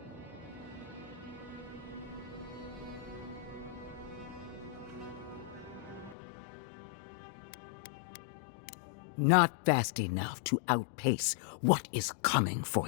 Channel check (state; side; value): drops out; right; at 6.2 s